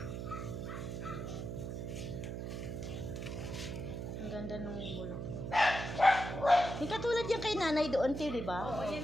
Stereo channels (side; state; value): right; noise; hum, 5 dB below the sound